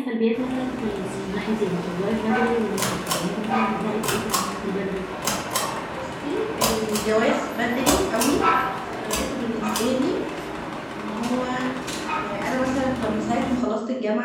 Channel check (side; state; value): both; identical; correlation 1.00